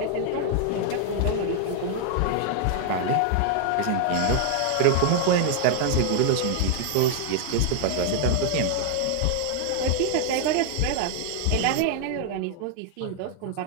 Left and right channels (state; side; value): different; both; correlation 0.00